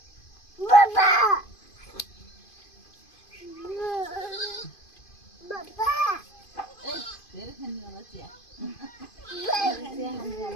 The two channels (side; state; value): right; late; 2.5 ms